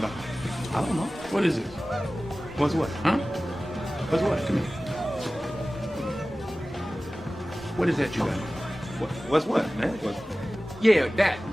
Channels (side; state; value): both; normal; correlation 0.97